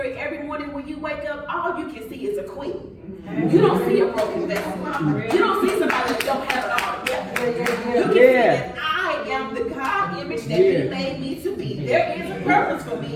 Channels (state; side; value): identical; both; correlation 1.00